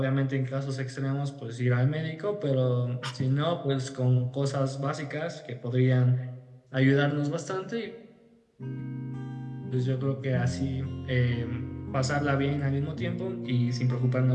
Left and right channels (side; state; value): both; identical; correlation 1.00